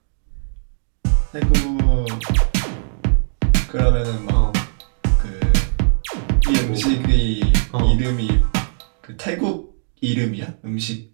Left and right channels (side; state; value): left; silent; digital silence